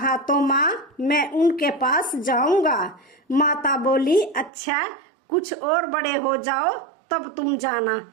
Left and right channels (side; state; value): left; drops out; at 4.5 s